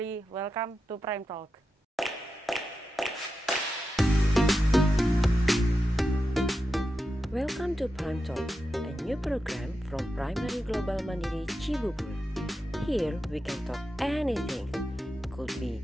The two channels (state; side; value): normal; both; correlation 0.89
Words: welcome to Prime Talk. Welcome to Prime Talk, a new program from Primary Global Mandiri Cibubur. Here we can talk anything. Could